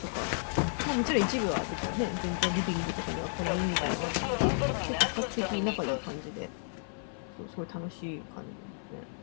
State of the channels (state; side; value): silent; right; 56 dB below the other